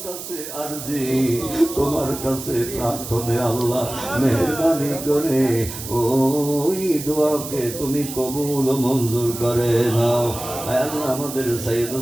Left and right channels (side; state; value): right; noise; hiss, 10 dB below the sound